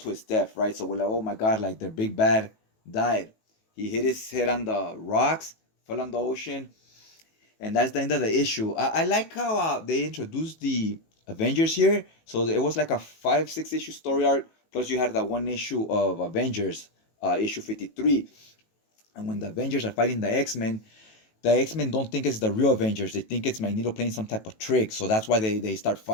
his death, right? So we're like, oh my God, like their big bad died. He hit his head on the rocks, fell on the ocean, and that's the end of the issue. I like how they introduced the Avengers here. So it was like a 5-6 issue story arc, plus you had that one issue of Avengers, issue 53. And when the Avengers are fighting the X-Men don't think it's the real Avengers. They think it's Magneto playing some type of trick. So that's why they start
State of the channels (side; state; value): right; late; 18 ms